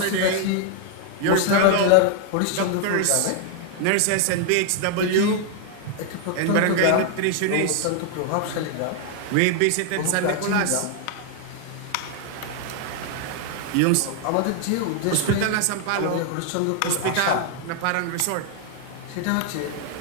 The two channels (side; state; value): both; different; correlation 0.00